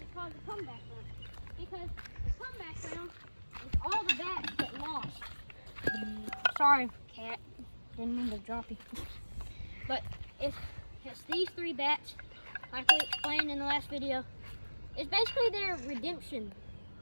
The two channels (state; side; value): inverted; both; correlation -1.00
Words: it called the comeback round? Because the comeback round is all the bats that lost. Sorry, cat. Didn't mean to drop you. But if it's these 3 bats, like we explained in the last video, it's basically their redemption.